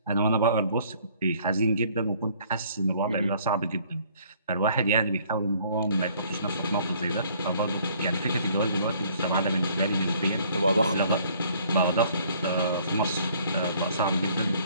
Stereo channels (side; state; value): both; inverted; correlation -0.60